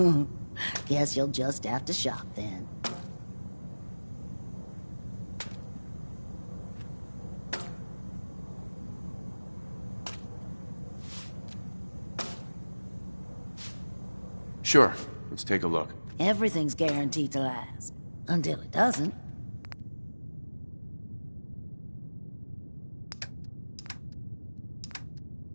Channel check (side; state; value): both; inverted; correlation -1.00